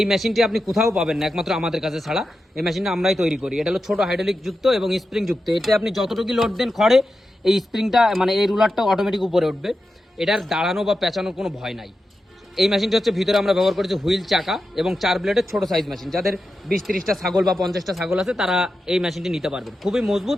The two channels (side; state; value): both; normal; correlation 0.90